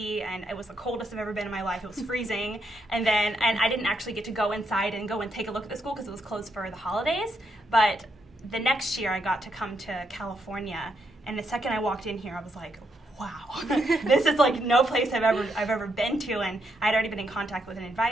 and it was the coldest I've ever been in my life. It was freezing. And I didn't actually get to go inside and go and take a look at the school because it was closed for the holidays. But the next year I got to come to California, and the second I walked in here, I was like, wow, this is no place I've ever been to. And I'd already been in contact with an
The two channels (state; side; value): normal; both; correlation 0.78